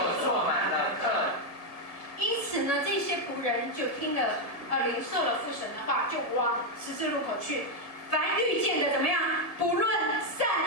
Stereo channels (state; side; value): late; right; 1.7 ms